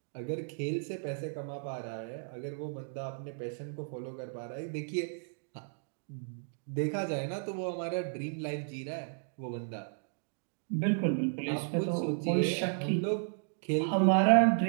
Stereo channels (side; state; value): left; silent; digital silence